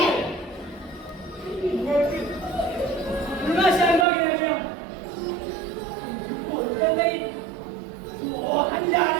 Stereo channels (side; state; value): left; drops out; at 4.0 s